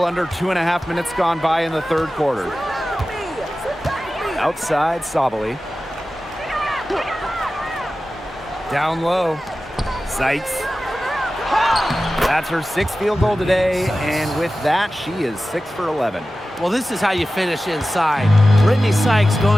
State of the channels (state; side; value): normal; both; correlation 0.95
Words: under 2.5 minutes gone by in the third quarter. Outside, Sabali. Down low. Sykes. That's her 6th field goal today, and with that, she is 6 for 11. Well, this is how you finish inside. Brittany Sykes